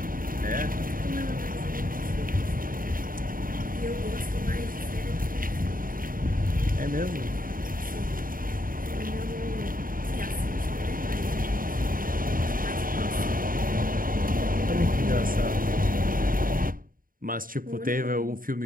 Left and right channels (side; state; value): left; late; 0.41 ms